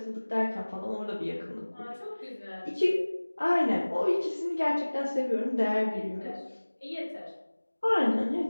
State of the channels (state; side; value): inverted; both; correlation -1.00